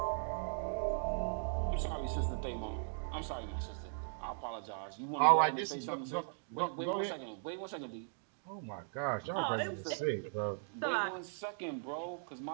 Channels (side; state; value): left; silent; digital silence